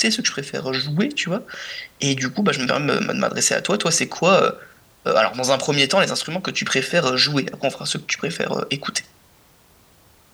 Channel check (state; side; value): identical; both; correlation 1.00